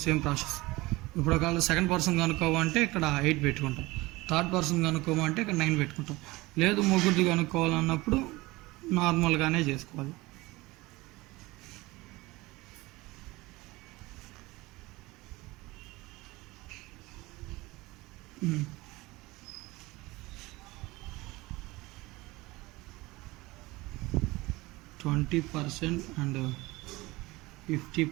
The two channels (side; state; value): left; quieter; 21.1 dB